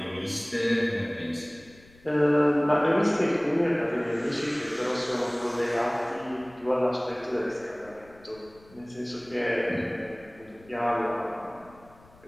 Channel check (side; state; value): left; noise; rumble, 26 dB below the sound